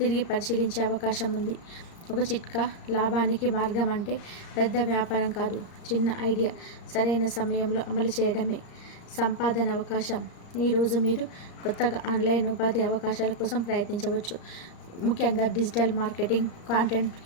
పరిశీలించే అవకాశం ఉంది. ఒక చిట్కా. లాభానికి మార్గం అంటే పెద్ద వ్యాపారం కాదు, చిన్న ఐడియా సరైన సమయంలో అమలు చేయడమే. సంపాదన అవకాశం. ఈరోజు మీరు కొత్తగా ఆన్లైన్ ఉపాధి అవకాశాల కోసం ప్రయత్నించవచ్చు. ముఖ్యంగా digital marketing, content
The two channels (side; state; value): right; late; 35 ms